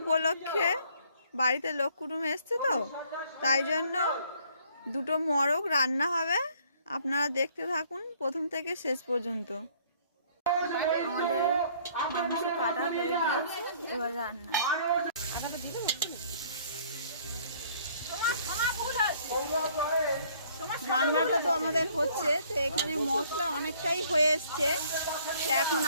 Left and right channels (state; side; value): inverted; both; correlation -0.60